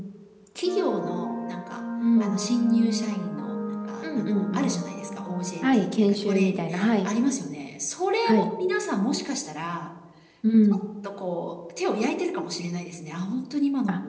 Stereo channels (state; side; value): identical; both; correlation 1.00